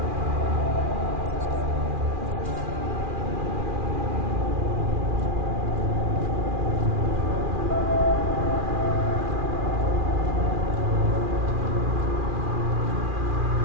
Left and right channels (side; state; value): left; late; 2.4 ms